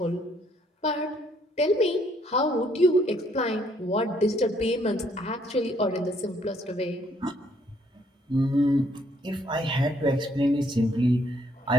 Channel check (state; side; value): normal; both; correlation 0.67